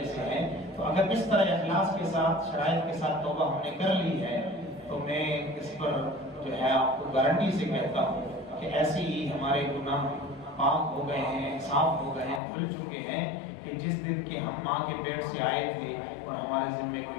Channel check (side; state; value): right; drops out; at 12.4 s